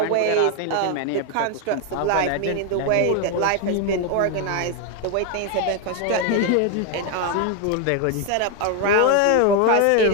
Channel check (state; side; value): different; both; correlation 0.01